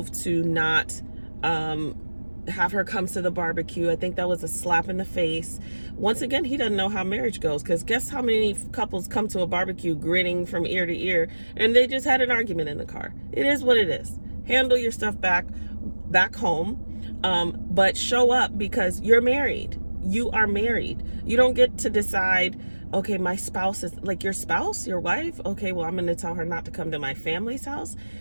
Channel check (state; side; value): inverted; both; correlation -1.00